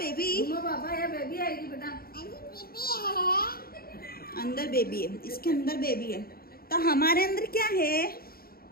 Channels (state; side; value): late; right; 0.44 ms